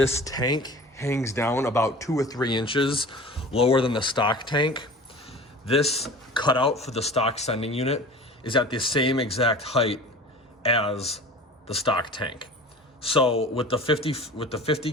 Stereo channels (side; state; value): both; normal; correlation 0.39